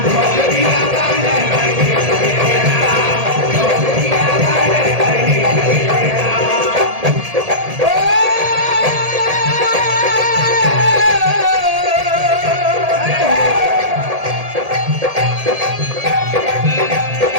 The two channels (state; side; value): late; left; 1.8 ms